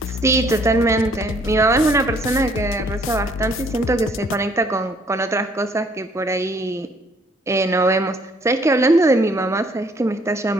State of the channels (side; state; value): both; normal; correlation 0.62